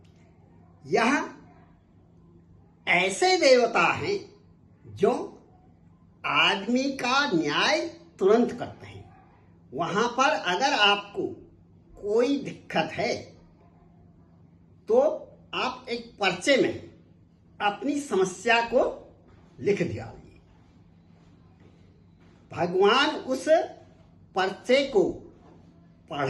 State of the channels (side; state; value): both; identical; correlation 1.00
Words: यह ऐसे देवता हैं जो आदमी का न्याय तुरंत करते हैं। वहां पर अगर आपको कोई दिक्कत है तो आप एक पर्चे में अपनी समस्या को लिख दिया। भगवान उस पर्चे को